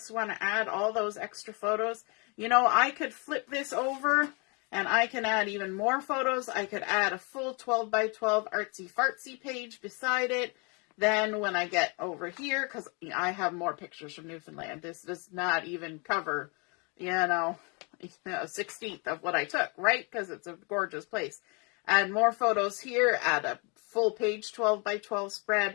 want to add all those extra photos, you know, I could flip this over and I can add even more photos. I could add a full 12 by 12 artsy fartsy page beside it. Then when I get over here, because I have more pictures from Newfoundland, this does not even cover, you know, a 16th of what I took, right? Because it's a gorgeous place. Add more photos here, add a full page 12 by 12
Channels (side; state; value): right; quieter; 32.4 dB